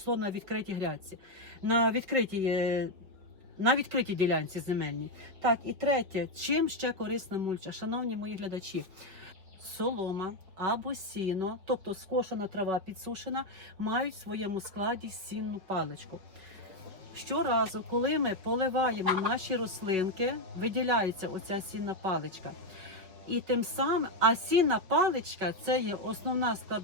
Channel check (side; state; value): left; late; 5.1 ms